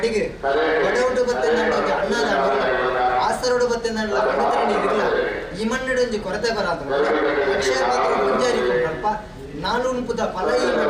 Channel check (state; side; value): identical; both; correlation 1.00